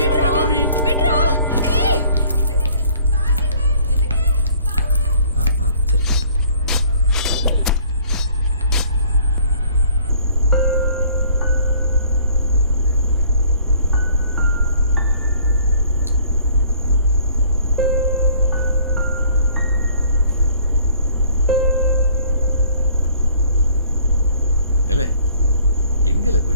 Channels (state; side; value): inverted; both; correlation -0.56